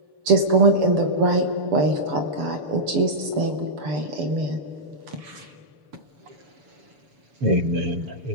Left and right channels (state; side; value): late; left; 6.8 ms